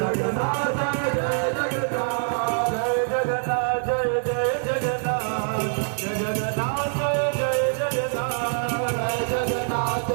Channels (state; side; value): silent; left; digital silence